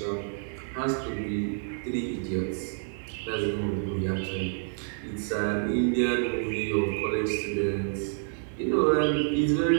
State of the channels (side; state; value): left; silent; 59 dB below the other